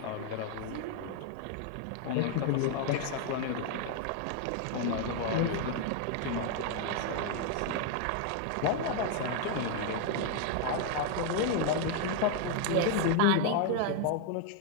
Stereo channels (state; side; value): different; both; correlation 0.00